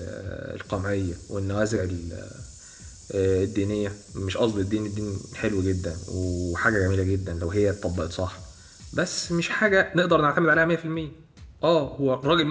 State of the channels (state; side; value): identical; both; correlation 1.00